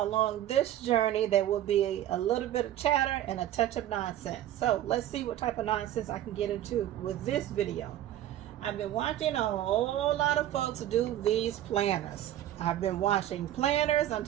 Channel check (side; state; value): left; quieter; 12.5 dB